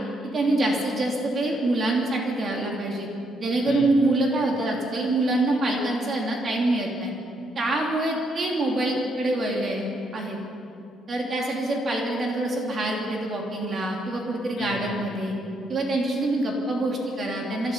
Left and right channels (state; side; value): normal; both; correlation 0.75